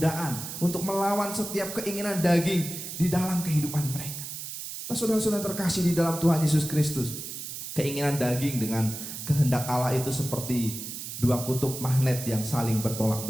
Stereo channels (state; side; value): noise; right; hiss, 8 dB below the sound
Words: untuk melawan setiap keinginan daging di dalam kehidupan mereka. Nah, saudara-saudara terkasih di dalam Tuhan Yesus Kristus, keinginan daging dengan kehendak Allah itu seperti dua kutub magnet yang saling bertolak